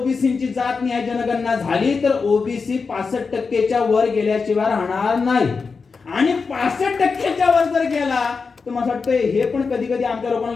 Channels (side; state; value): right; quieter; 4.9 dB